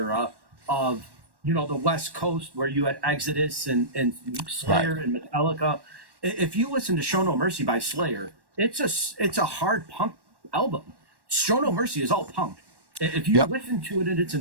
of the West Coast, where you had Exodus and Slayer Right. and Metallica. If you listen to Show No Mercy by Slayer, it's a hard punk album. Show No Mercy is all punk. If you Yep. listen to it in its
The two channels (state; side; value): late; left; 1.1 ms